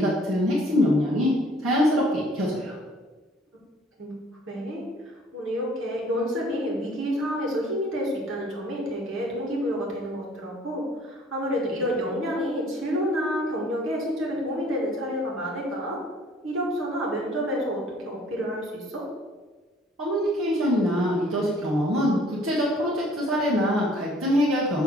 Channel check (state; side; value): normal; both; correlation 0.56